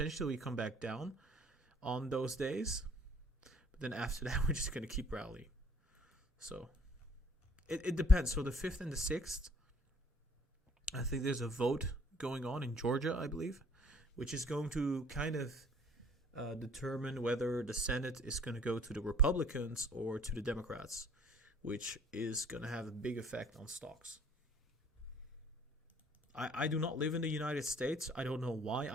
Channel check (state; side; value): normal; both; correlation 0.56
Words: we come back down on those days. But then after that, we're just going to keep rallying. So it depends. So the 5th and the 6th, I think there's a vote going on in Georgia, I believe, which is going to kind of determine whether the Senate is going to go to the Republicans or to the Democrats, which is going to have a big effect on stocks. I do not live in the United States. I don't know why